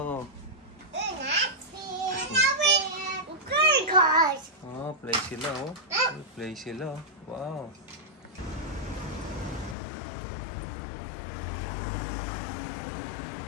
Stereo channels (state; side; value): drops out; right; at 9.8 s